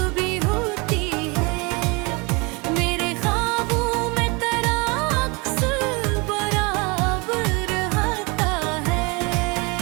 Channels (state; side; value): quieter; left; 28.4 dB